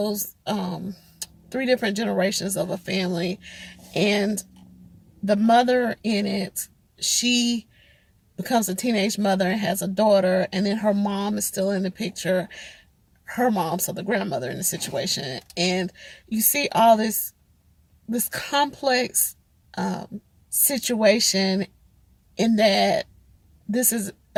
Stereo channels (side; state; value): both; identical; correlation 1.00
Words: three different generations of a family. And the mother in it, she becomes a teenage mother and has a daughter, and then her mom is still in the picture. Her mom, so the grandmother in the situation, and you see all this complex situation in that this is